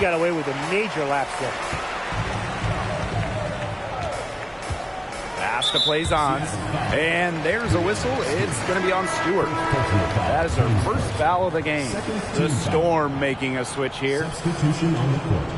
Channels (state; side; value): identical; both; correlation 1.00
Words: away with a major lapse there. Pass to Plaisance. And there's a whistle. It's going to be on Stewart. That is her first foul of the game. The Storm making a switch here. Substitution on the court.